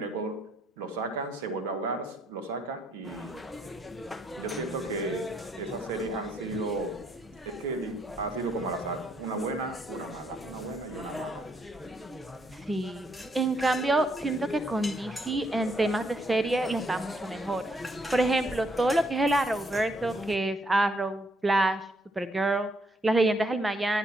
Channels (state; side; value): normal; both; correlation 0.72